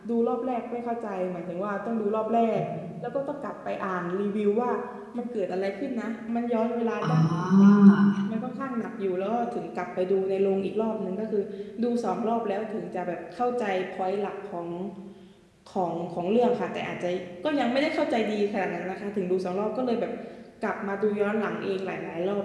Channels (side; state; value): both; identical; correlation 1.00